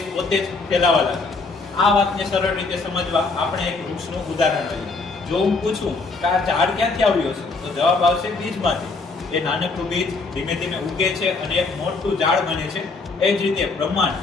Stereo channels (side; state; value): right; quieter; 3.9 dB